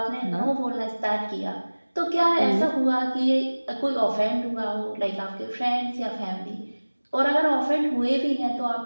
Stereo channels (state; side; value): inverted; both; correlation -1.00